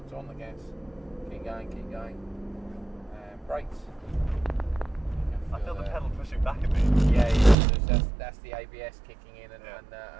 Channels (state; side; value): drops out; left; at 7.6 s